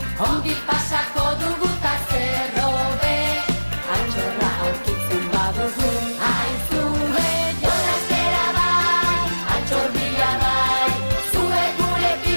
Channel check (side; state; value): both; inverted; correlation -1.00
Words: Ongi pasako dugu ta zerro be, altxorra aurkitzen badugu, aizue! Jolas bera bai, altxorria bai, zuek